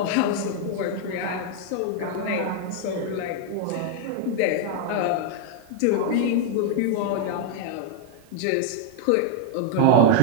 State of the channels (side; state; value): both; different; correlation 0.00